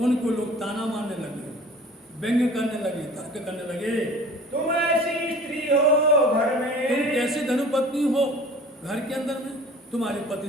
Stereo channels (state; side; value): normal; both; correlation 0.45